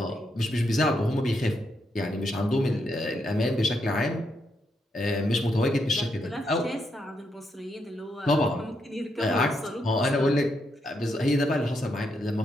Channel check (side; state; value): both; normal; correlation 0.79